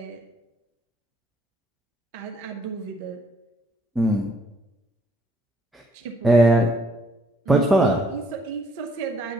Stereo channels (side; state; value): both; normal; correlation 0.67